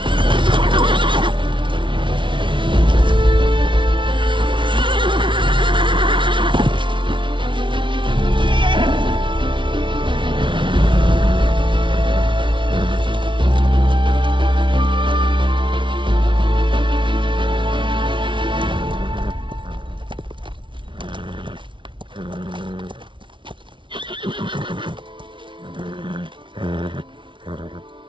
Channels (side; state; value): left; late; 0.24 ms